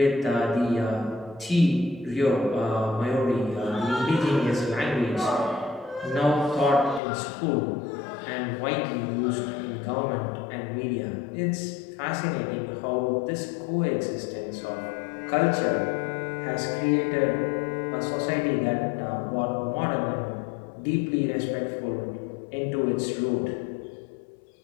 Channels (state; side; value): drops out; right; at 7.0 s